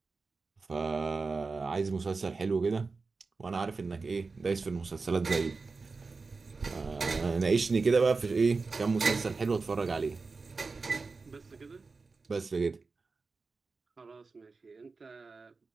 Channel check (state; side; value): quieter; left; 4.2 dB